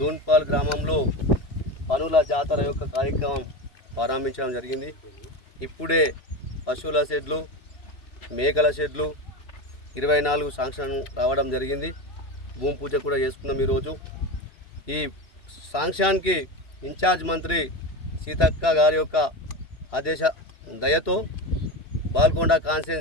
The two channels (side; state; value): right; late; 3.0 ms